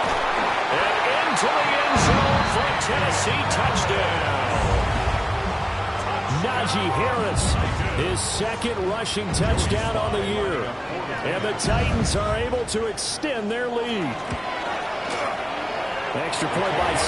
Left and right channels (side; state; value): both; identical; correlation 1.00